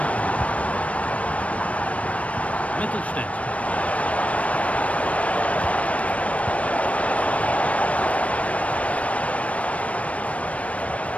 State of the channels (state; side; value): late; right; 0.065 ms